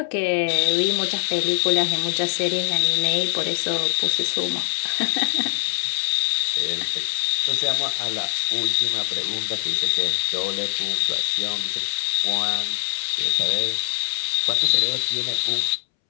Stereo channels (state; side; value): silent; right; 64 dB below the other